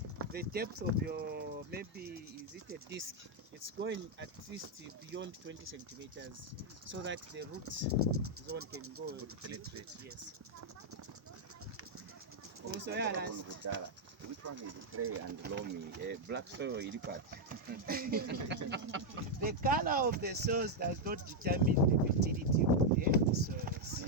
the depth of your, maybe is it a disc, it's going at least beyond 20 centimeters, so that the root zone can go to penetrate. Yes. Also, which one is clay and loamy? Black soil or part? The color of the soils does not determine the fertility of the soils.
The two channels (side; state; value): left; late; 1.7 ms